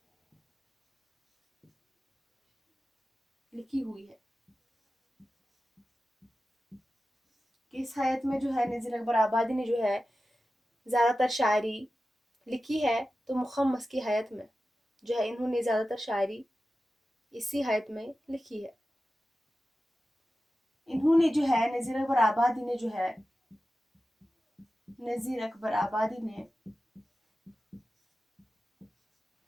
لکھی ہوئی ہے. اس حیت میں جو ہے نذیر اکبر آبادی نے جو ہے زیادہ تر شاعری لکھی ہے. تو مخمس کی حیت میں جو ہے انہوں نے زیادہ تر شاعری اسی حیت میں لکھی ہے. انہوں نے جو ہے نذیر اکبر آبادی نے جو ہے نذیر اکبر آبادی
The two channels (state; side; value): normal; both; correlation 0.94